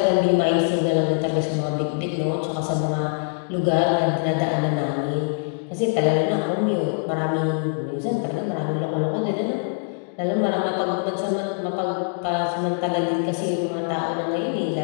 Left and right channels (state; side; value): silent; right; digital silence